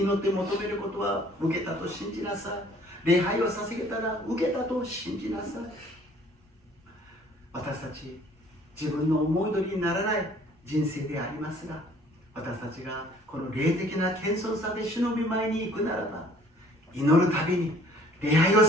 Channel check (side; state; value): both; normal; correlation 0.56